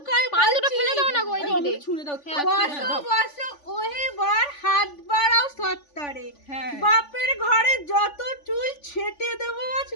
পান দুটো ফেলে দাও না গো ওই দিক দিয়ে ছুঁড়ে দাও বসো বসো ওহে বার হাত বাড়াও সত্তরে হ্যাঁ বাপের ঘরে যত চুল ছেটে দেবো আজ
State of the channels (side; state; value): right; late; 3.5 ms